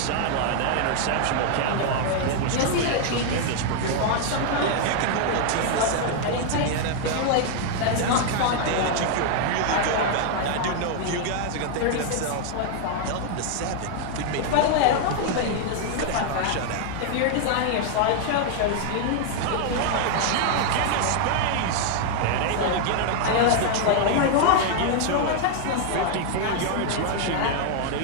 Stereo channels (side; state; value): both; different; correlation 0.00